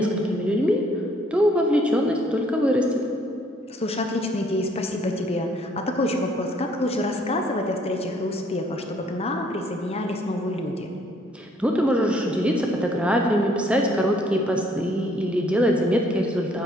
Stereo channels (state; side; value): normal; both; correlation 0.64